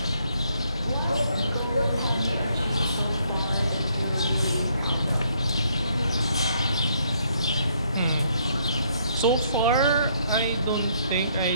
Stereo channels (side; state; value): both; inverted; correlation -0.69